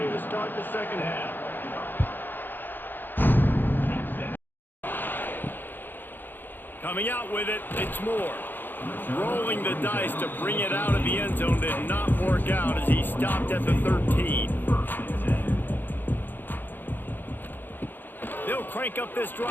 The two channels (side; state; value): right; late; 0.093 ms